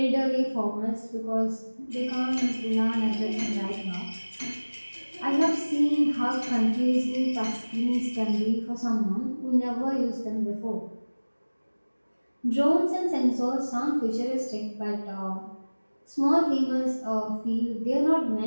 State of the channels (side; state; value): both; inverted; correlation -1.00